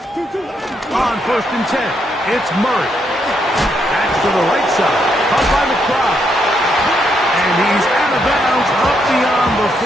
On 1st and 10, it's Murray. That's to the right side, caught by McBride. And he's out of bounds up beyond the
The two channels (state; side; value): normal; both; correlation 0.77